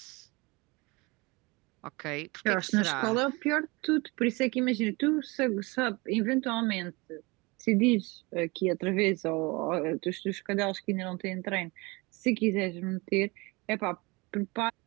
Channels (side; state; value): left; quieter; 25.5 dB